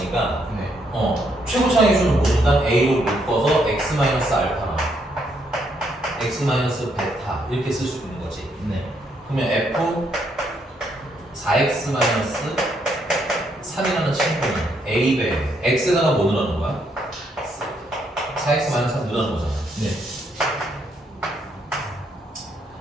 네. 최고차의 수는 뭐니까 A로 묶어서 X 마이너스 알파랑 X 마이너스 베타 이렇게 쓸 수 있는 거지. 네. 그러면 F 4X 마이너스 3이라는 친구는 A배 X에다가 뭐 넣는 거야? 4X 마이너스 3 넣는 거잖아. 네.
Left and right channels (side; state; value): both; normal; correlation 0.74